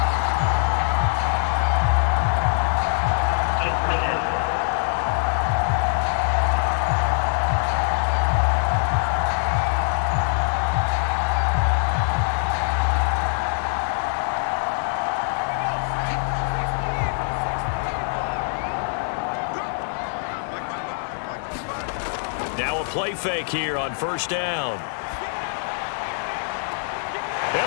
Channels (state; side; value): silent; right; digital silence